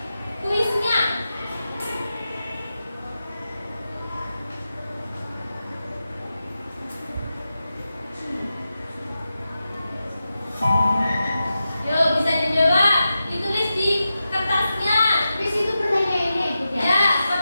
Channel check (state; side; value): inverted; both; correlation -0.91